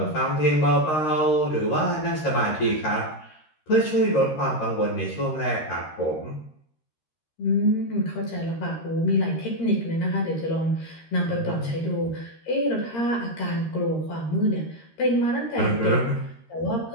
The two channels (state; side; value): late; right; 13 ms